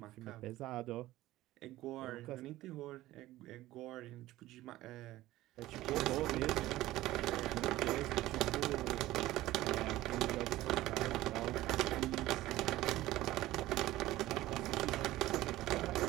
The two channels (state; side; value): quieter; left; 16.2 dB